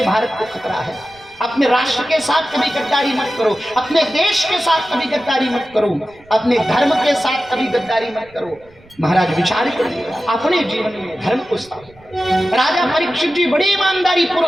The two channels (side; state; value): right; noise; rumble, 27 dB below the sound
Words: भारत को खतरा है। अपने राष्ट्र के साथ कभी गद्दारी मत करो, अपने देश के साथ कभी गद्दारी मत करो, अपने धर्म के साथ कभी गद्दारी मत करो। महाराज विचार करिए अपने जीवन में धर्म को स्थापित। राजा परीक्षित जी बड़ी ईमानदारी